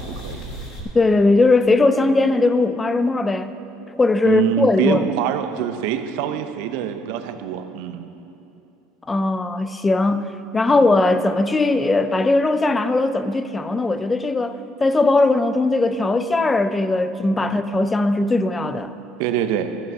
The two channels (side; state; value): both; normal; correlation 0.80